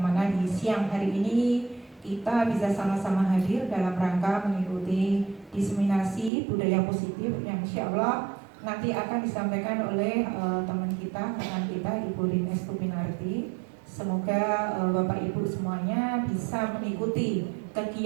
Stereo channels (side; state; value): left; drops out; at 6.3 s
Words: di siang hari ini kita bisa sama-sama hadir dalam rangka mengikuti diseminasi budaya positif yang insya Allah nanti akan disampaikan oleh teman kita, rekan kita Ibu Rinestu Pinarti. Semoga Bapak Ibu semuanya bisa mengikuti